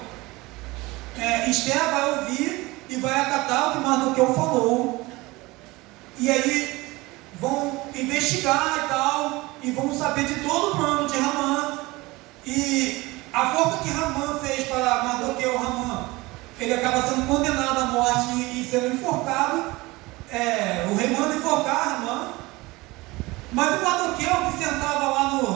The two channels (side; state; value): left; quieter; 21.7 dB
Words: Esther vai ouvir e vai acatar o que Mardoqueu falou, e aí vão investigar e tal, e vão saber de todo o plano de Ramã, e a forma que Ramã fez para Mardoqueu, ele acaba sendo condenado à morte e sendo enforcado. O rei manda enforcar Ramã, mas o Mardoqueu, que sentava lá